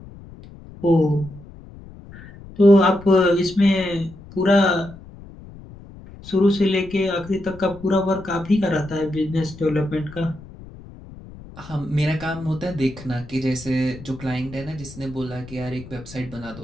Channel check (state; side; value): noise; left; rumble, 17 dB below the sound